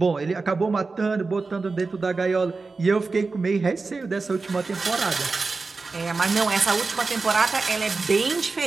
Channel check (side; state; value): left; quieter; 4.0 dB